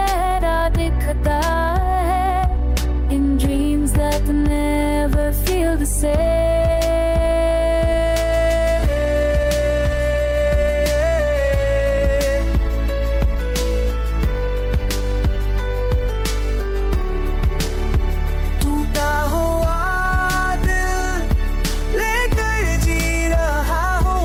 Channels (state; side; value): identical; both; correlation 1.00